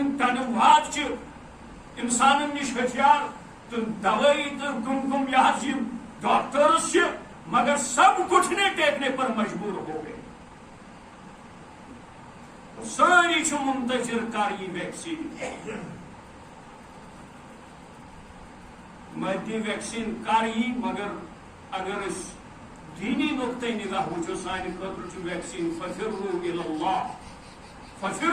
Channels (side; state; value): both; identical; correlation 1.00